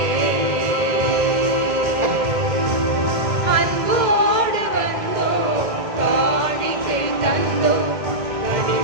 அன்போடு வந்தோம், காணிக்கை தந்தோம்,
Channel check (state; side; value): late; left; 2.1 ms